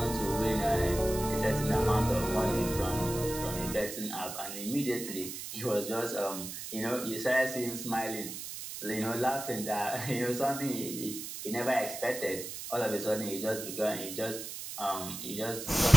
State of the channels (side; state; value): right; noise; hiss, 8 dB below the sound